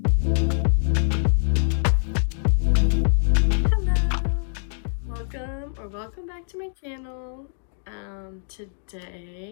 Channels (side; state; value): right; silent; digital silence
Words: Hello, welcome back to my channel.